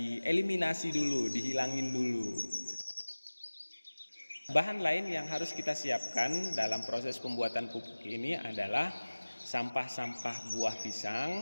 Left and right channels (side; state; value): both; inverted; correlation -1.00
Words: dulu, dihilangin dulu. Bahan lain yang harus kita siapkan dalam proses pembuatan pupuk ini adalah sampah-sampah buah